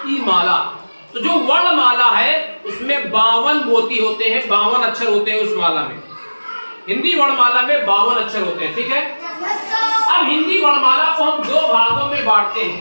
की माला। तो जो वर्णमाला है उसमें 52 मोती होते हैं, 52 अक्षर होते हैं उस माला में। हिंदी वर्णमाला में 52 अक्षर होते हैं, ठीक है। अब हिंदी वर्णमाला को हम दो भागों में बांटते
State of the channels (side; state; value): both; inverted; correlation -1.00